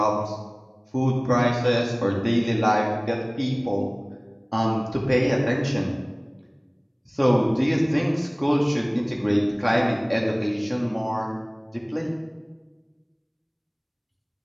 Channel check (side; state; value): both; identical; correlation 1.00